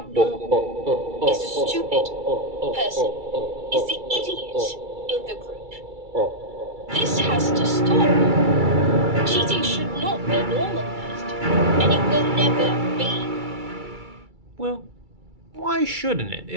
is the stupid person, is the idiot in the group. This has to stop. Cheating should not be normalized, and it will never be. Well, why shouldn't it?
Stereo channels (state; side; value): late; left; 2.3 ms